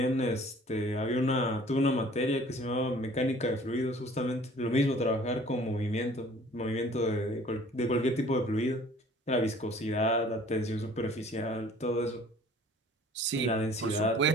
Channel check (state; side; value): normal; both; correlation 0.51